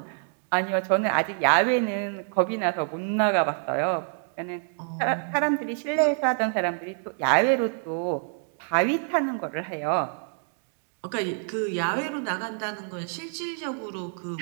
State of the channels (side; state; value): left; silent; 60 dB below the other